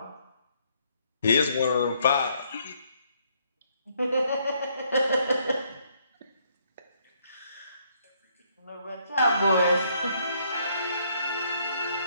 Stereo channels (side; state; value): both; inverted; correlation -0.69